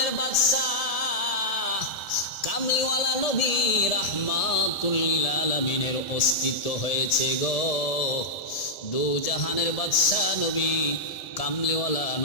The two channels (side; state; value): right; late; 1.7 ms